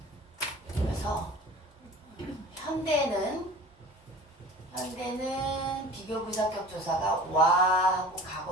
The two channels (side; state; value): both; normal; correlation 0.41